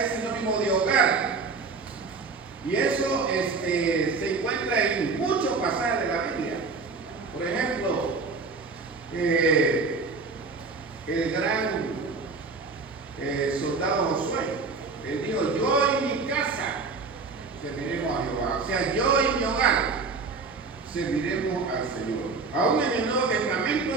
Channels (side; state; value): left; quieter; 4.3 dB